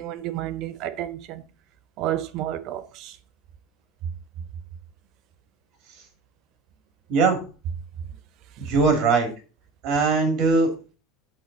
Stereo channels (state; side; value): quieter; left; 4.3 dB